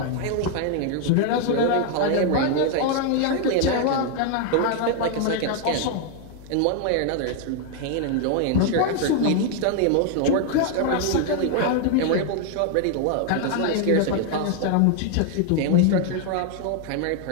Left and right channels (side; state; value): both; different; correlation 0.00